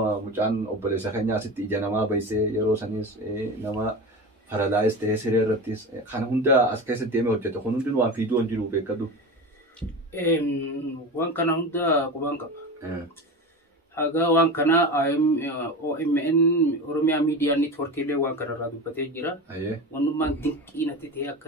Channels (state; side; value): normal; both; correlation 0.27